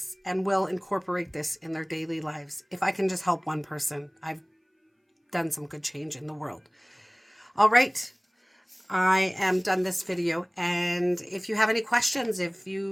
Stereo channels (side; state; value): both; identical; correlation 1.00